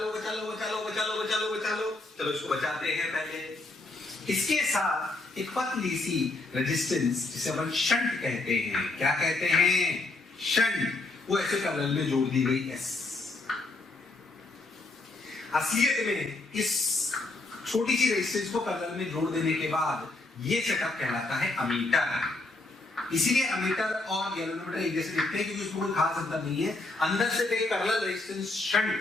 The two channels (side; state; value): right; quieter; 3.1 dB